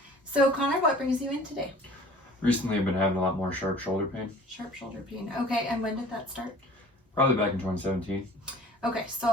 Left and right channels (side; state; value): both; normal; correlation 0.47